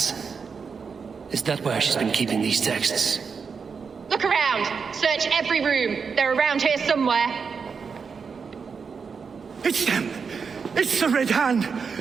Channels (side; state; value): left; quieter; 5.7 dB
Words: Is that where she's been keeping these texts? Look around! Search every room! They're around here somewhere! It's them! It's the Red Hand!